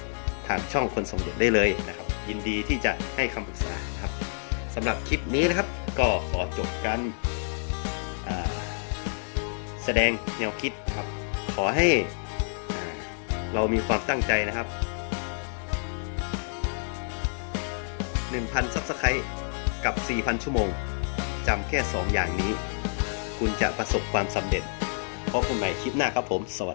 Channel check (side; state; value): right; silent; digital silence